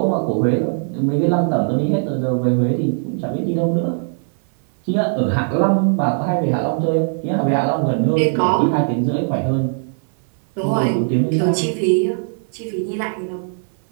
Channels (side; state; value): left; silent; 58 dB below the other